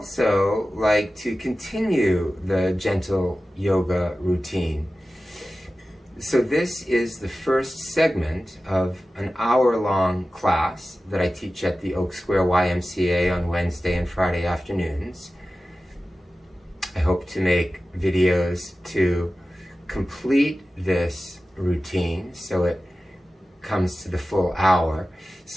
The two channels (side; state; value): both; normal; correlation 0.95